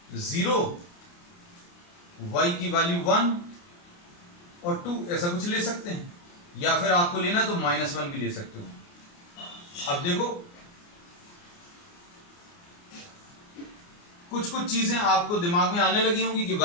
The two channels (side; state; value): right; late; 29 ms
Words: 0, y की वैल्यू 1 और 2 ऐसा कुछ ले सकते हैं, या फिर आपको लेना तो -1 भी ले सकते हो। अब देखो कुछ कुछ चीजें आपको दिमाग में आने लगी होंगी कि